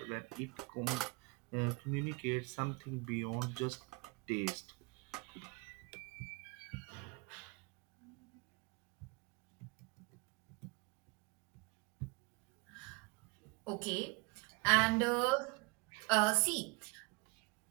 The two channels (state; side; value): quieter; left; 26.3 dB